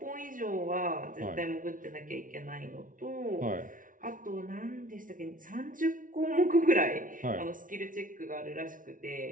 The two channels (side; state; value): left; late; 0.38 ms